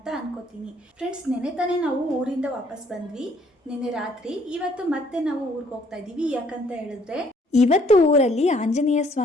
ಅನ್ಕೋತೀನಿ. ಫ್ರೆಂಡ್ಸ್, ನೆನೆ ತಾನೇ ನಾವು ಊರಿಂದ ವಾಪಸ್ ಬಂದ್ವಿ, ನೆನೆ ರಾತ್ರಿ. ಇವತ್ತು ಮತ್ತೆ ನಾವು ಊರಿಗೆ ಹೋಗ್ತಾ ಇದ್ದೀವಿ. ಯಾಕಂತ ಹೇಳಿದ್ರೆ ಇವತ್ತು ಊರಲ್ಲಿ ಆಂಜನೇಯ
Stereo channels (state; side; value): normal; both; correlation 0.63